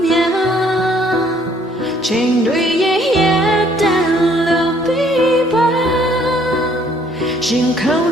များချိန်တွေရဲ့တန်လို့ပြီးပါရင်ခုန်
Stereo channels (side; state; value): both; normal; correlation 0.63